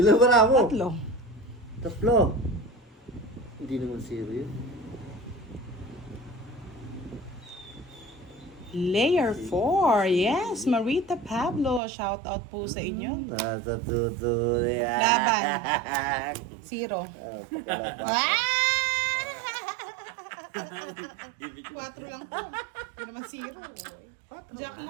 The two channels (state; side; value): drops out; left; at 11.8 s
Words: ba na ako? 3. 3. Hindi naman 0 yun. Layer 4. Yes, Marita Pablo. Shout out po sa inyo. Nasa tuto yan. Laban. 0. Ah! 4 lang po. Hindi naman 0. Jack